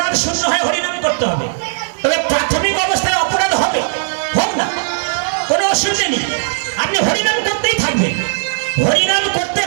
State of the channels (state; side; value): silent; left; digital silence